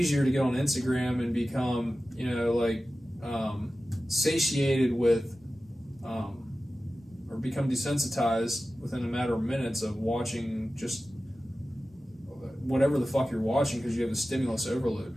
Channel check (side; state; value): both; normal; correlation 0.95